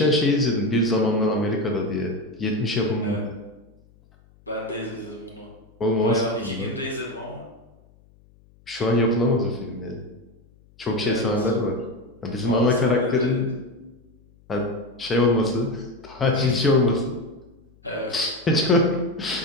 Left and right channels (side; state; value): left; noise; hum, 29 dB below the sound